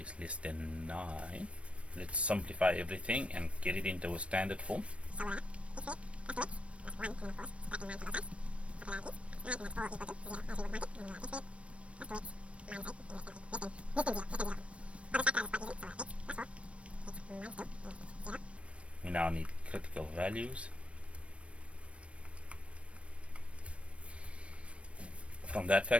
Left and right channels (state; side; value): late; left; 0.061 ms